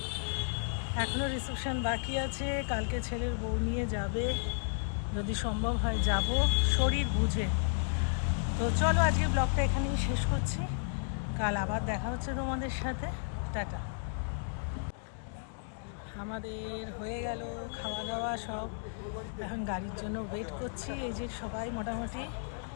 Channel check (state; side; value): silent; right; digital silence